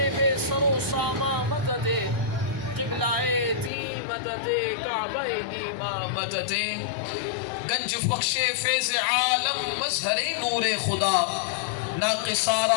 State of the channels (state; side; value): drops out; right; at 3.7 s